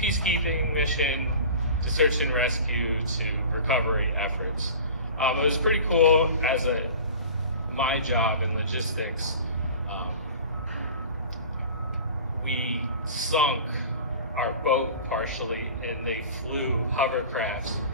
mission to search and rescue to recovery efforts. It was pretty cool as my job in logistics. We sunk our boat partially, and they flew hovercrafts,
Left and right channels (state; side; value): inverted; both; correlation -0.39